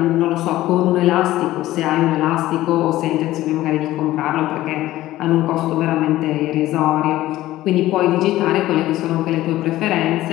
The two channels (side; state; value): right; quieter; 15.6 dB